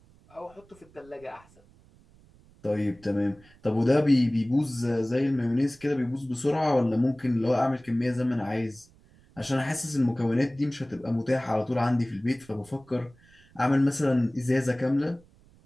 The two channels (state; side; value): noise; right; rumble, 28 dB below the sound